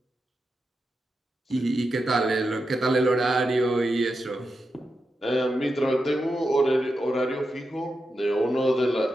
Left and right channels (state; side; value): normal; both; correlation 0.88